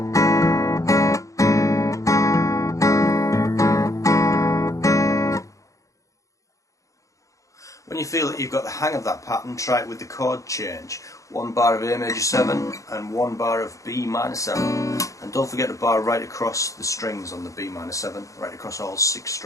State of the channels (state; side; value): late; right; 0.16 ms